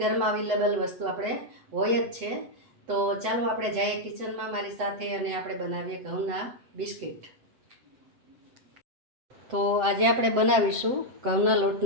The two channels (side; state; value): left; late; 7.6 ms